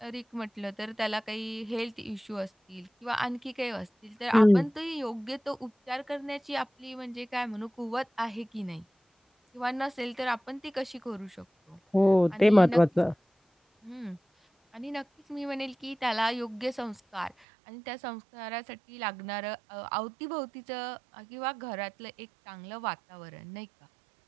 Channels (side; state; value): left; drops out; at 17.4 s